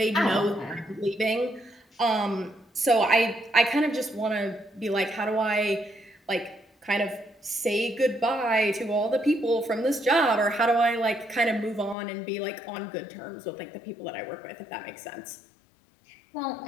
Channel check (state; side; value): drops out; right; at 12.0 s